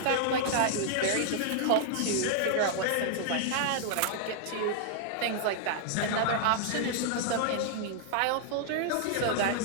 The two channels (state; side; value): different; both; correlation -0.01